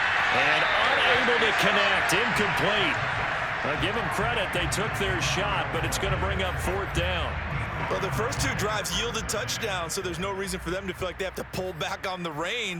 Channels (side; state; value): both; identical; correlation 1.00